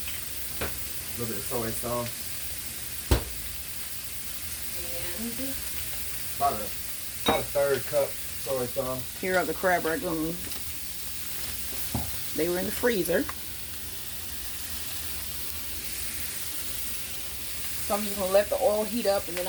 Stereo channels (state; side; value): identical; both; correlation 1.00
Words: soy sauce. And About a third cup soy sauce. here are the CRAB Rangoons. They were in the freezer. So I'm just going to let the oil heat up and then